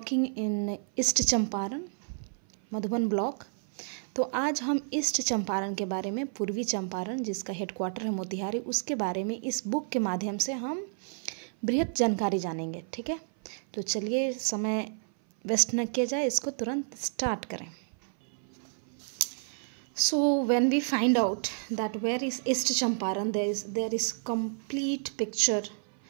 in East Champaran, Madhuban block, तो आज हम ईस्ट चंपारण के बारे में, पूर्वी चंपारण जिसका हेडक्वार्टर है मोतिहारी, उसके बारे में इस बुक के माध्यम से हम बृहद जानकारी जानेंगे। ठीक है, तो चलिए समय वेस्ट न किया जाए, इसको तुरंत स्टार्ट करें। So when we find out that where is East Champaran, there is complete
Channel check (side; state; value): left; silent; 56 dB below the other